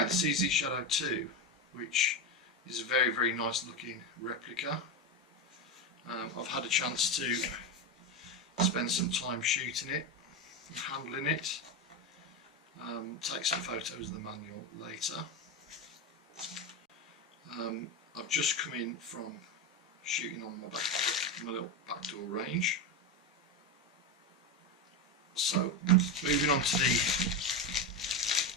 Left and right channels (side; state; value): both; normal; correlation 0.14